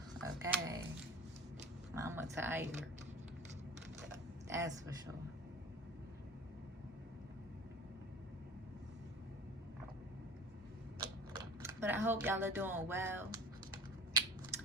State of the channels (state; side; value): normal; both; correlation 0.39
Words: Okay. Mama tired. That's for sure. But I hope y'all are doing well.